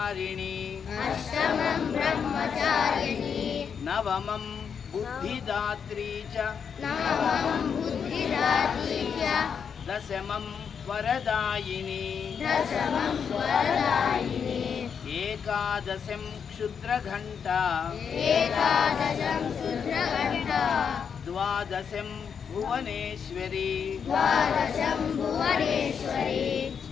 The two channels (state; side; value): quieter; right; 6.9 dB